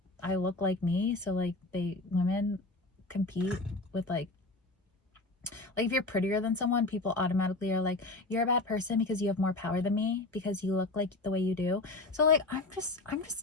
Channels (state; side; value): quieter; right; 3.0 dB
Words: I look like me, so like, women compete with like if you're prettier than someone, people automatically are like, you're a bad person because you have more power than me, because you look like the way you do. So like, I'm